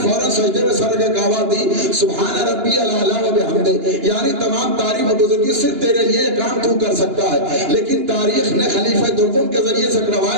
فوراً سجدے میں سر کے آواز دی، سبحان ربی الاعلیٰ و بحمدہ، یعنی تمام تعریف و بزرگی صرف تیرے لیے یہ کام تو کر سکتا ہے. لیکن تاریخ نے خلیفہ دوم کے ذریعے سے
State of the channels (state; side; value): late; left; 2.9 ms